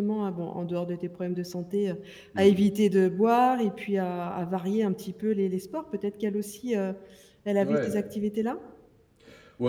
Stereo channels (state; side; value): identical; both; correlation 1.00